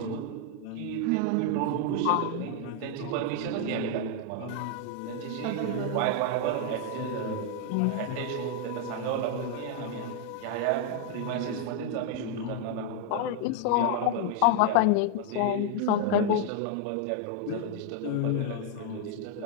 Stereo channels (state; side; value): different; both; correlation 0.00